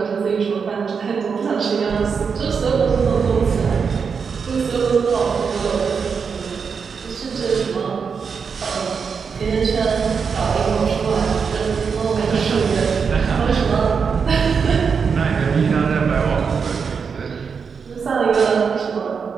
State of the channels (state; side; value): quieter; left; 5.9 dB